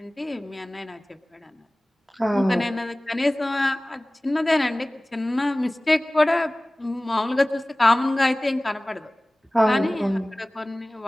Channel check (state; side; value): normal; both; correlation 0.98